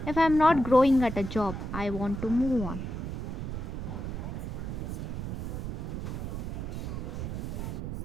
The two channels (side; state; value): right; noise; rumble, 4 dB below the sound